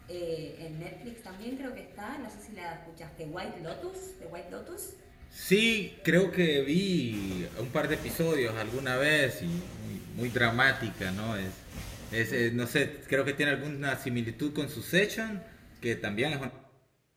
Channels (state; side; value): identical; both; correlation 1.00